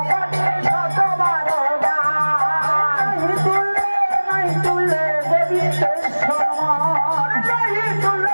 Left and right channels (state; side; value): inverted; both; correlation -1.00